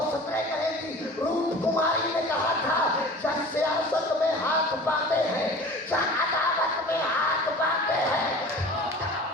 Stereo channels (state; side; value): normal; both; correlation 0.40